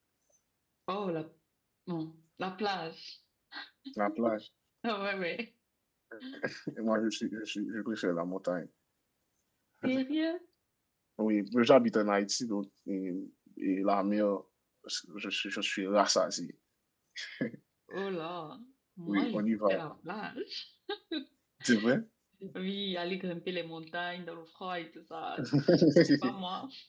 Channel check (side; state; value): both; identical; correlation 1.00